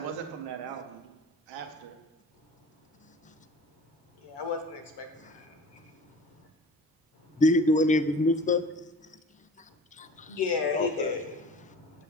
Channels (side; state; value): both; normal; correlation 0.42